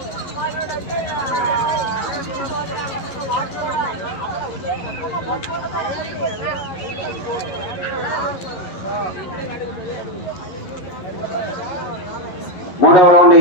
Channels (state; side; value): late; right; 11 ms